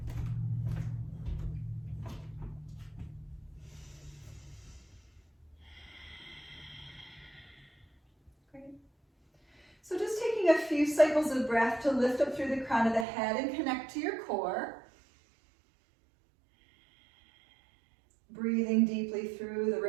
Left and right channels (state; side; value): drops out; left; at 13.1 s